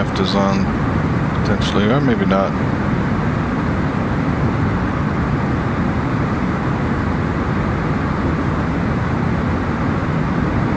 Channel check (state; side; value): identical; both; correlation 1.00